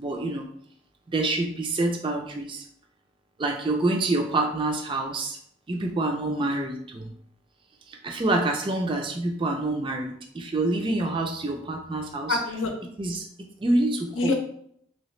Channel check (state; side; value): normal; both; correlation 0.54